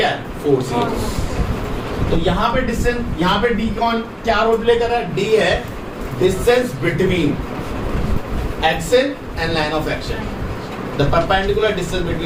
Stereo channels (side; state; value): both; identical; correlation 1.00